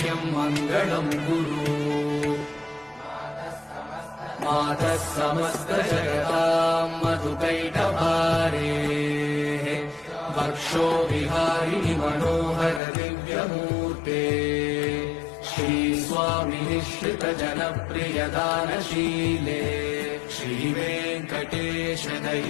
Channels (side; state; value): right; drops out; at 12.8 s